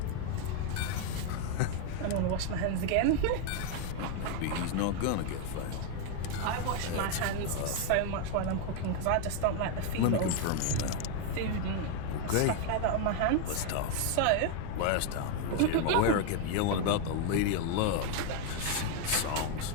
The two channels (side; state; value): both; different; correlation 0.00